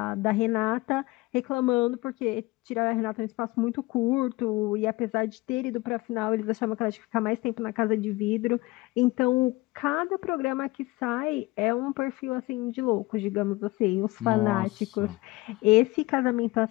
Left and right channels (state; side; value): quieter; right; 21.2 dB